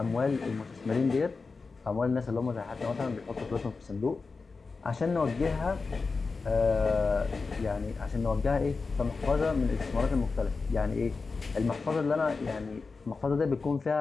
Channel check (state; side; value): quieter; right; 4.3 dB